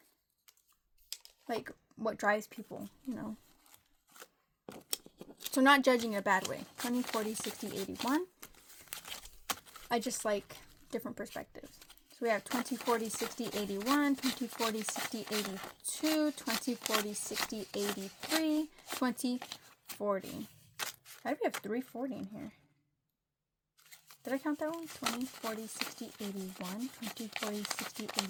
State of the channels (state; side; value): identical; both; correlation 1.00